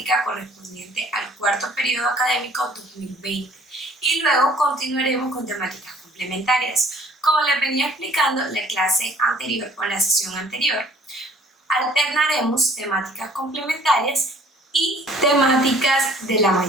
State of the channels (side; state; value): both; normal; correlation 0.55